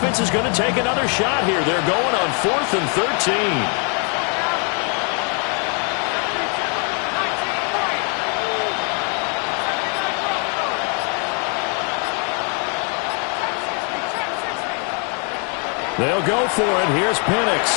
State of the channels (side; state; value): right; quieter; 39.0 dB